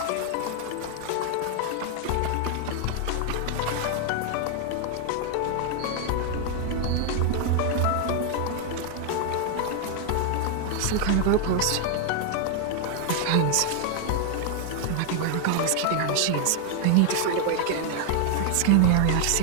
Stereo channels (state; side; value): different; both; correlation 0.00